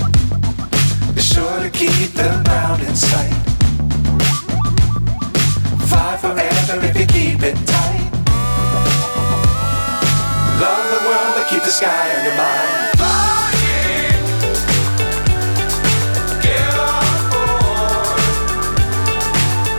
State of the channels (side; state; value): both; inverted; correlation -1.00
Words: Be sure to keep the ground in sight. Fly forever if you keep it tight. Love keep the sky on your mind. Flying, get on board.